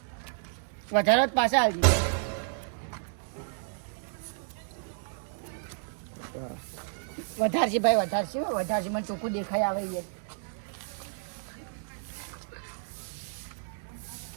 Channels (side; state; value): left; silent; digital silence